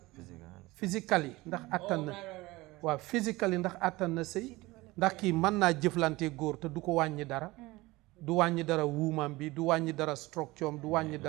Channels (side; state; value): left; quieter; 20.6 dB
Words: ndax attan na waaw physically ndax attan na sëy ndax kii mën naa jëflante góor te du ko wàññi dara du wàññi dara wuumam bi du wàññi dara structure am du wàññi